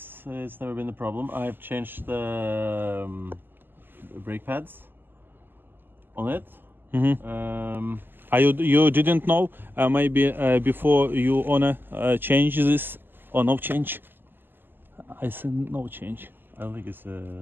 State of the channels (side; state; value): left; late; 0.094 ms